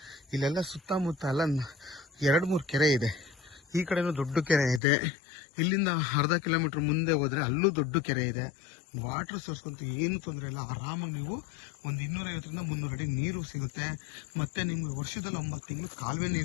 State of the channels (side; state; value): right; drops out; at 4.8 s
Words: ಇಲ್ಲೆಲ್ಲ ಸುತ್ತಮುತ್ತ ಎಲ್ಲ 2-3 ಕೆರೆ ಇದೆ. ಈ ಕಡೆನೂ ದೊಡ್ಡ ಕೆರೆ ಇದೆ. ಇಲ್ಲಿಂದ ಅರ್ಧ ಕಿಲೋಮೀಟ್ರ್ ಮುಂದೆ ಹೋದರೆ ಅಲ್ಲೂ ದೊಡ್ಡ ಕೆರೆ ಇದೆ. ವಾಟರ್ ಸೋರ್ಸ್ ಅಂತೂ ಏನು ತೊಂದರೆ ಇಲ್ಲ. ಆರಾಮಾಗಿ ನೀವು ಒಂದು 250 ರಿಂದ 300 ಅಡಿ ನೀರು ಸಿಗುತ್ತೆ. ಮತ್ತು ನಿಮಗೆ ವರ್ಷದಲ್ಲಿ 9 ತಿಂಗಳು ಕಾಲುವೆ